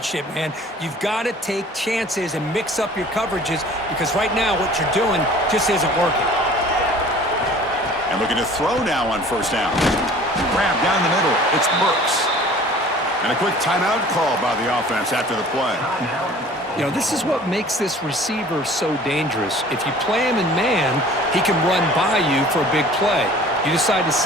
man. You've got to take chances and mix up your coverages because right now what you're doing just isn't working. And looking to throw now on first down. Grab down the middle. It's Burks. And a quick timeout call by the offense after the play. You know, this is what makes this receiver so dangerous. If you play him in man, he can run by you for a big play. You decide to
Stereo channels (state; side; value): normal; both; correlation 0.48